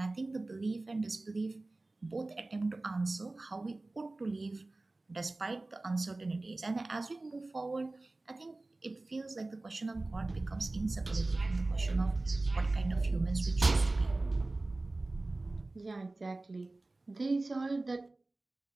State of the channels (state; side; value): quieter; left; 3.0 dB